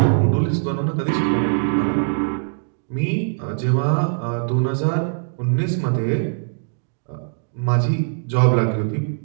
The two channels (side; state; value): left; silent; digital silence